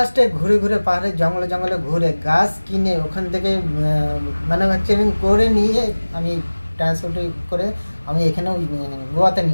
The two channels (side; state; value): both; inverted; correlation -1.00